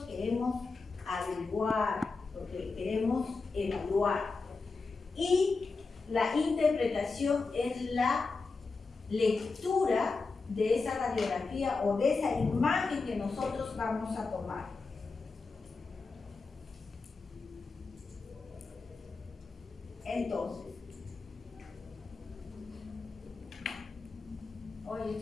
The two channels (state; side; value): quieter; right; 4.1 dB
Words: queremos averiguar, lo que queremos evaluar. Y la interpretación es la lectura de esa radiografía o de esa imagen que nosotros vamos a tomar. Entonces, oye,